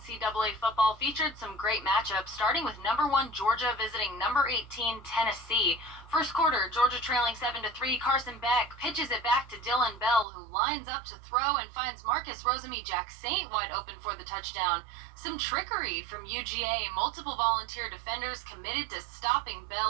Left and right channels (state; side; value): drops out; left; at 10.2 s